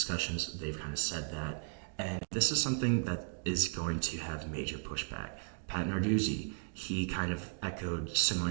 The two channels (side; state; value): left; silent; 54 dB below the other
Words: They've kind of said that. And this is something that is going to have major pushback. Pat Narduzzi, he kind of echoed